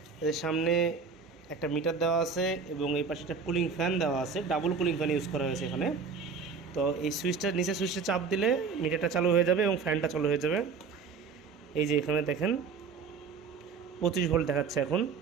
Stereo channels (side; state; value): left; quieter; 5.4 dB